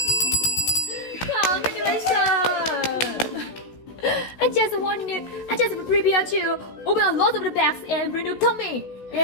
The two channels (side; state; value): right; late; 16 ms